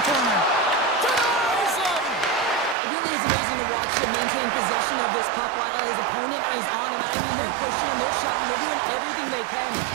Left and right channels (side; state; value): left; drops out; at 2.8 s